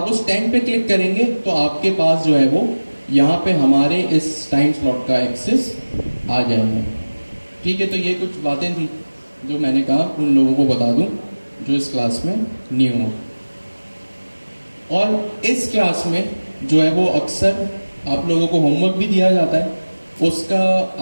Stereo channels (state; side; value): inverted; both; correlation -1.00